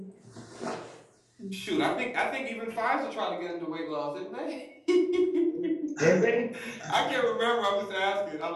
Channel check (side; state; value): both; identical; correlation 1.00